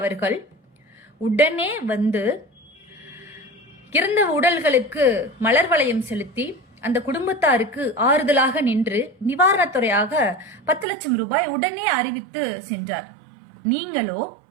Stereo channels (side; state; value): left; drops out; at 10.9 s